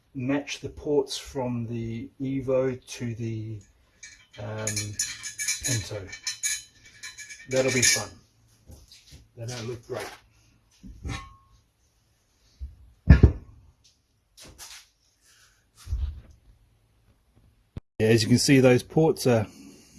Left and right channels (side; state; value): both; identical; correlation 1.00